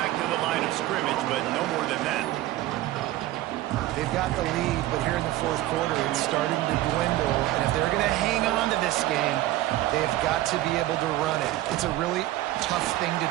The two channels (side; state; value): left; quieter; 15.7 dB